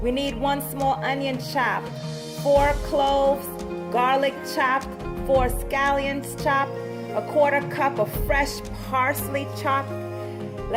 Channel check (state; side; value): identical; both; correlation 1.00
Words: We need 1 small onion chopped, 4 cloves, garlic chopped, 4 scallions chopped, a 1/4 cup of fresh parsley chopped.